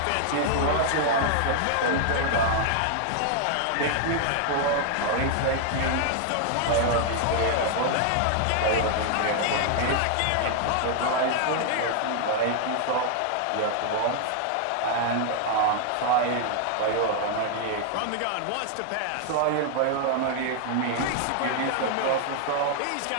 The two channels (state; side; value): different; both; correlation 0.00